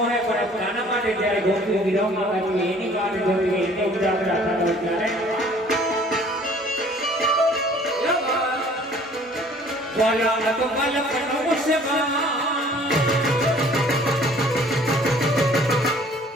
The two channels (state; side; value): normal; both; correlation 0.54